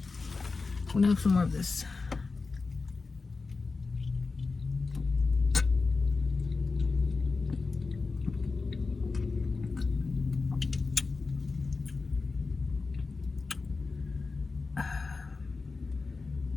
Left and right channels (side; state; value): right; quieter; 4.1 dB